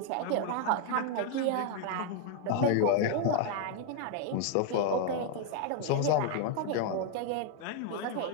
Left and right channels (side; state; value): both; different; correlation 0.00